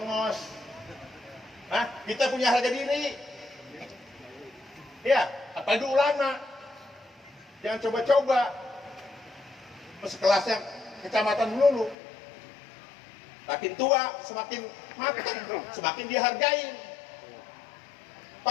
Hah? Kita punya harga diri, ya, apalagi ulama, jangan coba-coba, sekelasnya kecamatan dulu. Makin tua, semakin matang, semakin dihargain.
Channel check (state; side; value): drops out; right; at 12.0 s